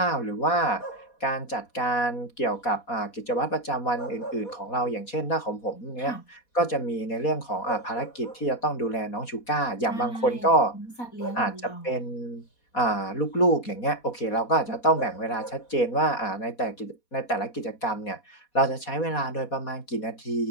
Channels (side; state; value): right; late; 4.2 ms